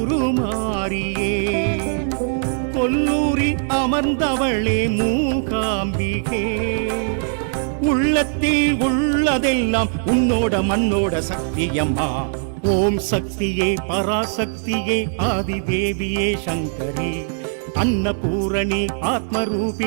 கொல்லூரில் அமர்ந்தவளே மூகாம்பிகே உள்ளத்தில் உள்ளதெல்லாம் உன்னோட மண்ணோட சக்தியம்மா ஓம் சக்தியே பராசக்தியே ஆதிதேவியே சங்கரி அன்னபூரணி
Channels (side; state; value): left; silent; 61 dB below the other